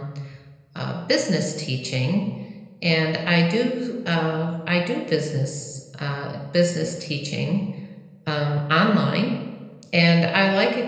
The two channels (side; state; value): both; identical; correlation 1.00